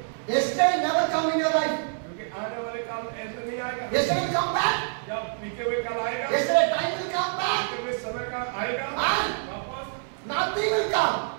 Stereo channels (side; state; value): left; silent; 60 dB below the other